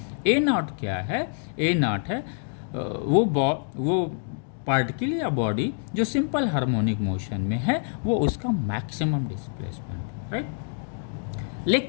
A not क्या है? ए नॉट है वो पार्टिकल या बॉडी जो सिंपल हार्मोनिक मोशन में है, वो उसका मैक्सिमम डिस्प्लेसमेंट, राइट।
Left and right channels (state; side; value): silent; right; digital silence